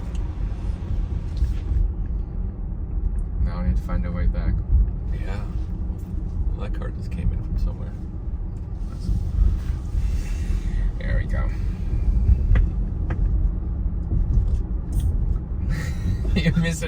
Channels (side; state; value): both; identical; correlation 1.00